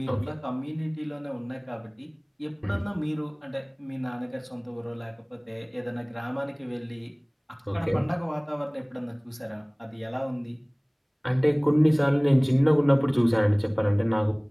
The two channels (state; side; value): identical; both; correlation 1.00